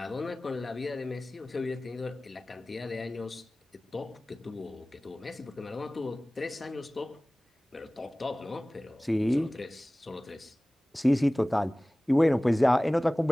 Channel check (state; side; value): normal; both; correlation 0.98